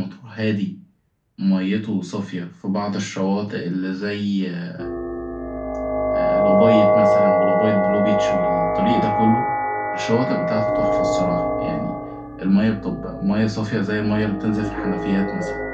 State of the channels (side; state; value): both; identical; correlation 1.00